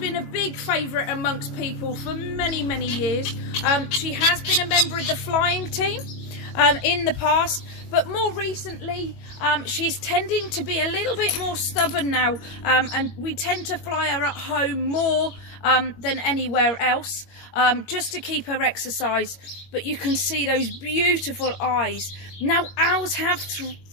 a big favourite amongst people for many, many years. She has been a member of the flying team in the past, but more recently she's tending to be a little bit more stubborn now, and we tend to fly her at home more than anywhere else, just to keep her exercise. But you can see those beautiful eyes. Now, owls have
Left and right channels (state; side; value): late; right; 22 ms